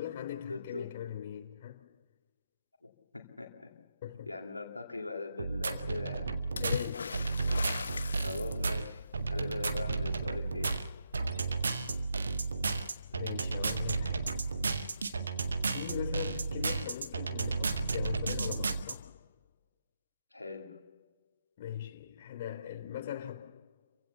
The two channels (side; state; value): both; inverted; correlation -0.82